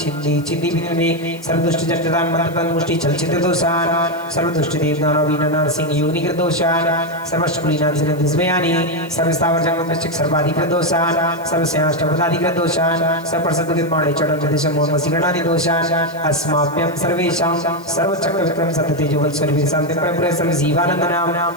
छिन्दी विनिमे सर्व दुष्ट जन्यदान मंत्रपन मुष्टि चलचित्र दोषान सर्व दुष्ट देवदानव वीर नरसिंह योनि कृत दोषान सर्व शुक्लिनाग जनित दिसमयानि सर्व स्थावर जंगम वृश्चिक सर्वाधिकृत दोषान सर्व स्याष्टपदाधिकृत दोषान सर्व प्रसद्दुगित माणे चढ़न जदिशम मोहन वसीगणादि दोषान अस्माभ्यम सर्वेशाम सर्व चक्र विक्रम सत्य तेजोबल स्वर्ग शांति प्रभु सर्व जीवानंद नाम।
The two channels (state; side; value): noise; left; hiss, 24 dB below the sound